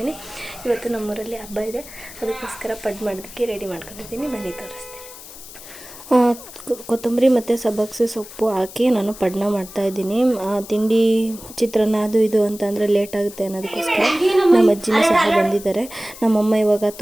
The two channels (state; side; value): noise; left; hiss, 16 dB below the sound